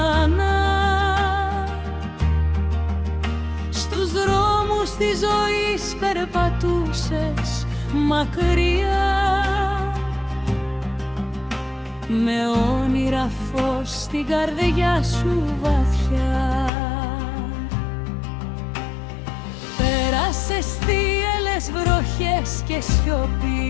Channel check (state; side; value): drops out; right; at 16.7 s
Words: Στους δρόμους της ζωής περπατούσες μακριά, με όνειρα φως στην καρδιά σου βαθιά. Πέρασες θύελλες βροχές και